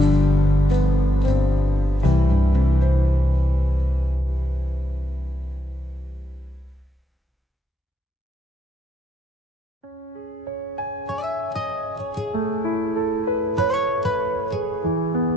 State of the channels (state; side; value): normal; both; correlation 0.76